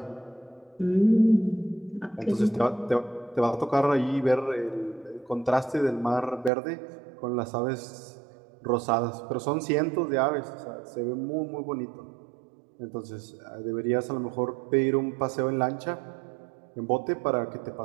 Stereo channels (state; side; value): drops out; left; at 6.5 s